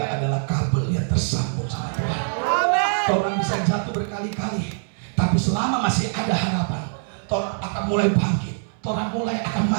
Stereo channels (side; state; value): left; silent; 61 dB below the other